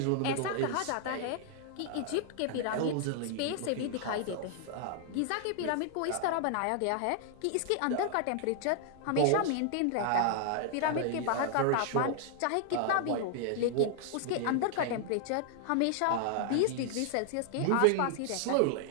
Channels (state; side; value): different; both; correlation -0.01